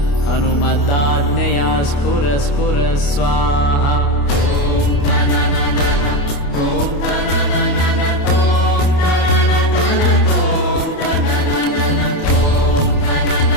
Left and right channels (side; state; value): right; late; 28 ms